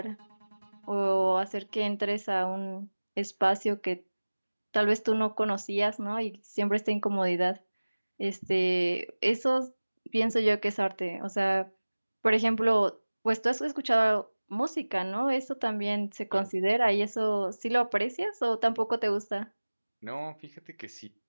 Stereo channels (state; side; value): inverted; both; correlation -1.00